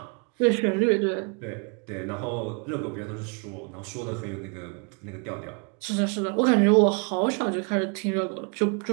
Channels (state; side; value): quieter; left; 35.9 dB